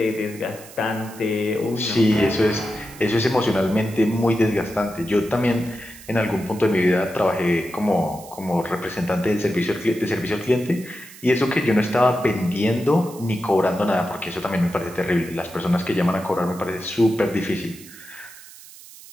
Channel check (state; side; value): noise; right; hiss, 19 dB below the sound